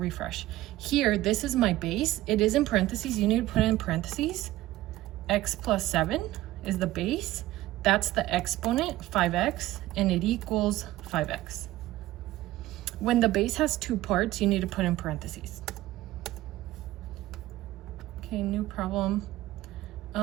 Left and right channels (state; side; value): quieter; left; 16.2 dB